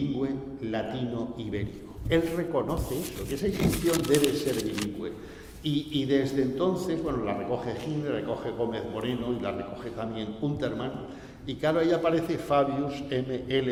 latino-ibérico. Él reconoce eso, que esa inscripción debe ser bilingüe. Y desde entonces, bueno, la recoge Hitler, recoge Gómez Moreno y la recoge también Untermann. Y claro, ahí aparece Fabius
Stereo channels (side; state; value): both; identical; correlation 1.00